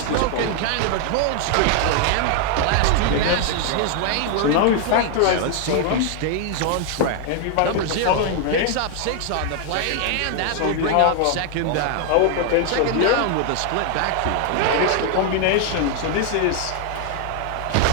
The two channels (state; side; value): different; both; correlation 0.00